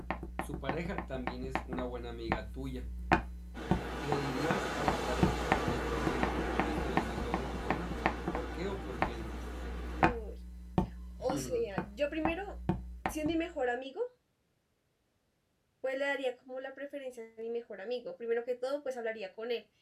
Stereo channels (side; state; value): both; identical; correlation 1.00